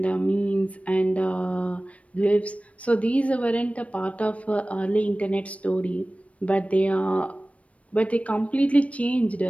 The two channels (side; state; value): right; late; 0.064 ms